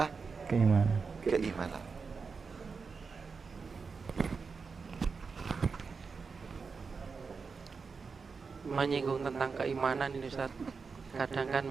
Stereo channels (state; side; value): quieter; left; 5.0 dB